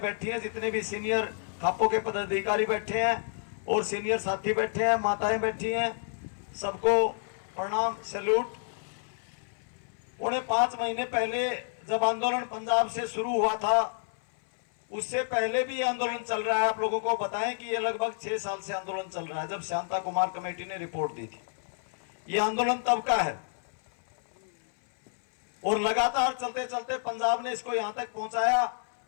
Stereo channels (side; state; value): right; silent; 58 dB below the other